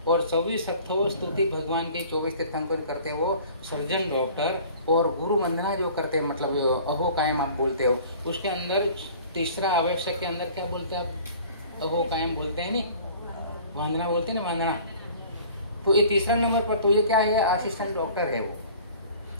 और 24 अट्ठाओ स्तुति भगवान के 24 तीर्थंकर करते हो, सर्जन डॉक्टर, और गुरु वंदना जो करते हैं, मतलब अहो कायम आप बोलते हो, उसके अंदर तीसरा आवश्यक के अंदर क्या बोलते हैं आप, अहो कायम बोलते हैं नहीं, वंदना बोलते हैं ना, वंदना। तो ये तीसरा नंबर पर तो ये क्या है, असिस्टेंट डॉक्टर है वो,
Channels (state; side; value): inverted; both; correlation -0.48